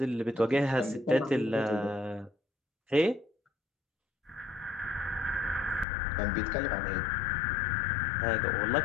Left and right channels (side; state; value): right; drops out; at 5.9 s